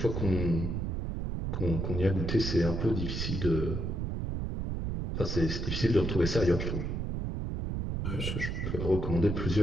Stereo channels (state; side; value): noise; right; rumble, 2 dB below the sound